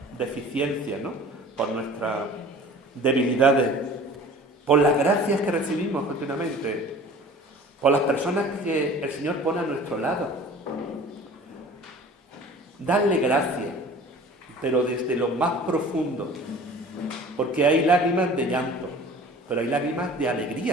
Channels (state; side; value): normal; both; correlation 0.44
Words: deficiencia, ¿no? Por nuestras debilidades, por las gracias que recibimos continuamente, por las personas que el Señor pone a nuestro lado. Darle gracias, pero desde lo más profundo, porque hay lágrimas de llanto, pero hay lágrimas de